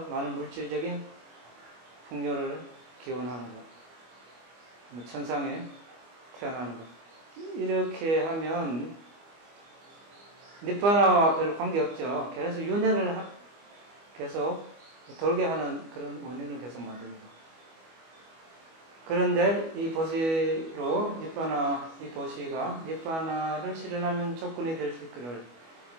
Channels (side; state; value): left; late; 25 ms